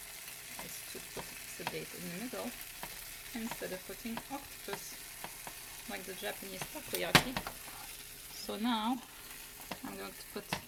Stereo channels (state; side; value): identical; both; correlation 1.00